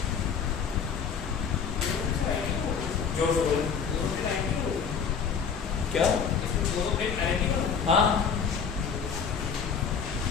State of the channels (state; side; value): quieter; right; 6.5 dB